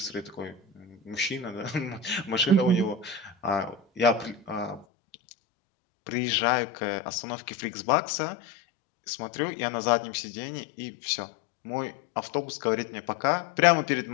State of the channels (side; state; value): right; drops out; at 4.9 s